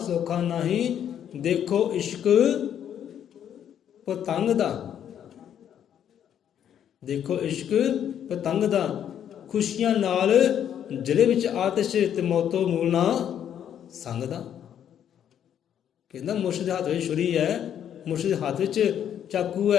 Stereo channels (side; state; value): right; quieter; 9.6 dB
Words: ਨਹੀਂ, ਦੇਖੋ ਇਸ਼ਕ ਪਤੰਗ ਦਾ, ਦੇਖੋ ਇਸ਼ਕ ਪਤੰਗ ਦਾ, ਖੁਸ਼ੀਆਂ ਨਾਲ ਜ਼ਿਲ੍ਹੇ ਵਿੱਚ ਆਤਿਸ਼, ਤੇ ਮੌਤੋਂ ਮੂਲ ਨਾ ਸੰਗ ਦਾ। ਕਹਿੰਦਾ ਮੁਰਸ਼ਿਦ ਦੇ ਹੱਥ ਵਿੱਚ ਛੁਰੀ ਹੈ, ਮੁਰਸ਼ਿਦ ਦੇ ਹੱਥ ਵਿੱਚ ਚਾਕੂ